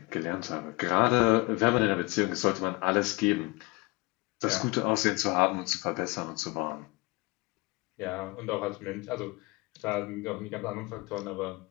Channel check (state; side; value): quieter; right; 25.0 dB